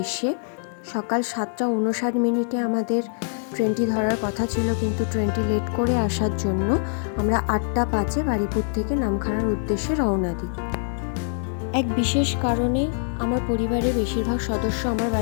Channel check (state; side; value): silent; right; 63 dB below the other